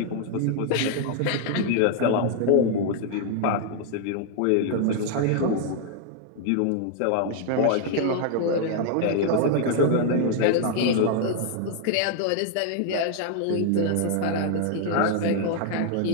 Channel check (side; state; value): both; different; correlation 0.00